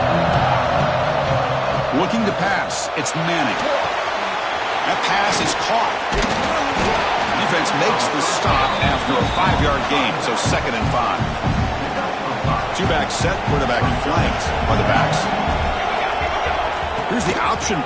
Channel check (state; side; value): identical; both; correlation 1.00